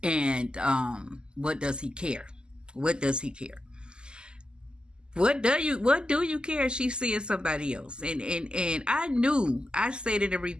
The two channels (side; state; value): left; late; 0.048 ms